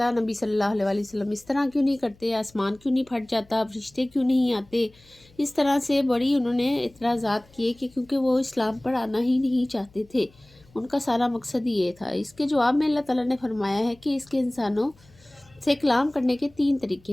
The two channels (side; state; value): left; noise; hum, 28 dB below the sound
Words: نبی صلی اللہ علیہ وآلہ وسلم اس طرح کیوں نہیں کرتے، آسمان کیوں نہیں پھٹ جاتا، فرشتے کیوں نہیں آتے۔ اس طرح سے بڑی انہوں نے اعتراضات کیے کہ کیونکہ وہ اسلام پر آنا ہی نہیں چاہتے تھے، ان کا سارا مقصد یہ تھا۔ اس کے جواب میں اللہ تعالیٰ نے فرمایا ہے کہ اس کے انسانوں سے کلام کرنے کے 3 طریقے